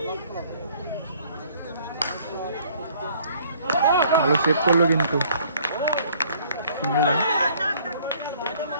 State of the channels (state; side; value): inverted; both; correlation -0.59